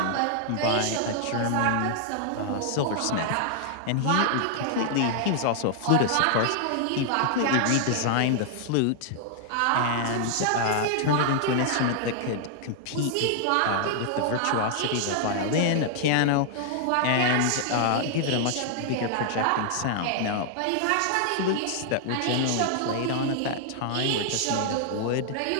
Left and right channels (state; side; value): different; both; correlation -0.01